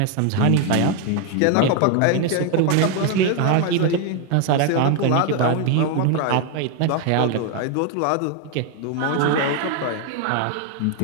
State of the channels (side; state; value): both; different; correlation 0.01